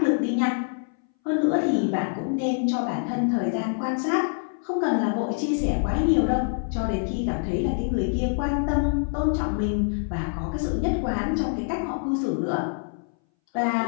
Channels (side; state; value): right; silent; 60 dB below the other